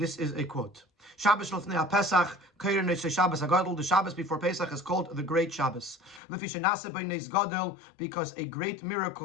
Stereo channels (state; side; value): drops out; right; at 6.2 s